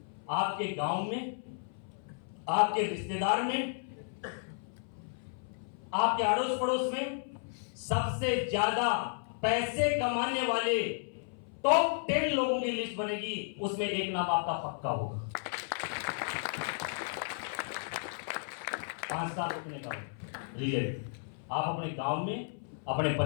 आपके गांव में, आपके रिश्तेदार में, आपके अड़ोस पड़ोस में सबसे ज्यादा पैसे कमाने वाले टॉप 10 लोगों की लिस्ट बनेगी, उसमें एक नाम आपका पक्का होगा। 5 साल रुकने का रिजल्ट आप अपने गांव में, अपने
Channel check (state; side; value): silent; right; 56 dB below the other